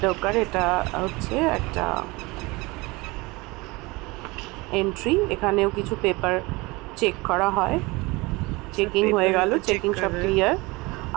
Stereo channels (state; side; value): quieter; left; 23.7 dB